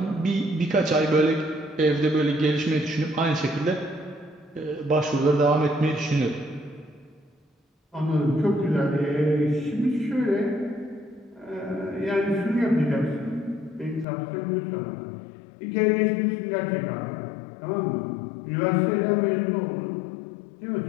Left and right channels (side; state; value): right; drops out; at 14.1 s